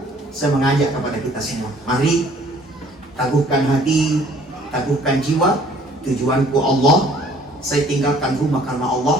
saya mengajak kepada kita semua, mari teguhkan hati, teguhkan jiwa. Tujuanku Allah, saya tinggalkan rumah karena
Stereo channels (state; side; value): normal; both; correlation 0.57